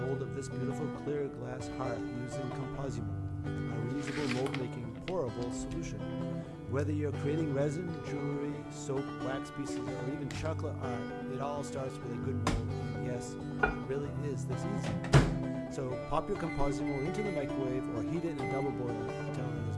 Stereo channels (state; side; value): identical; both; correlation 1.00